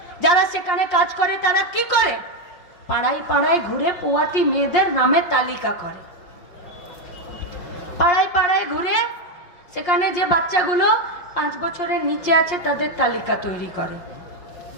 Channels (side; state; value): right; late; 5.6 ms